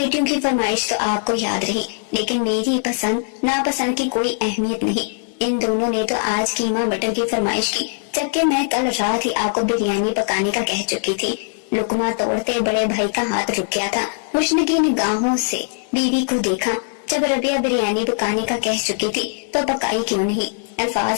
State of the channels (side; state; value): right; silent; 65 dB below the other